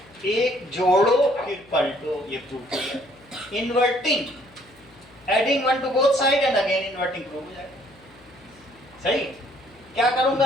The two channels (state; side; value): noise; left; hum, 27 dB below the sound